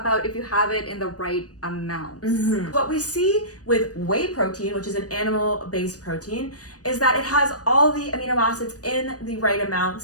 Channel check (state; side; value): late; right; 0.67 ms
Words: if you have it in the right amounts. Mm-hmm. What we see with whey protein, which is an animal-based protein, is that it has all the amino acids in the right